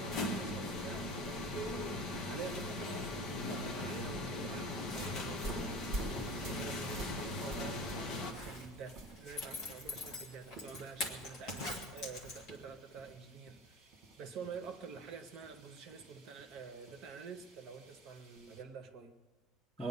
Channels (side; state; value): both; normal; correlation 0.35